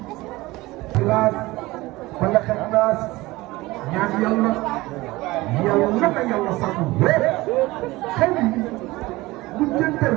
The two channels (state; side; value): quieter; left; 19.9 dB